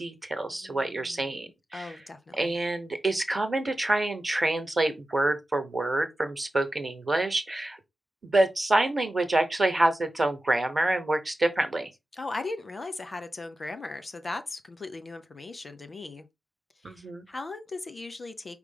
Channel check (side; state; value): both; normal; correlation 0.94